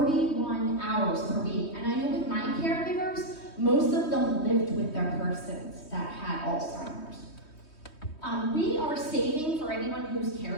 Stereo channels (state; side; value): late; right; 3.2 ms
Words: hours per week. And I know with my caregivers, most of them lived with their persons that had Alzheimer's. We are saving, for anyone who's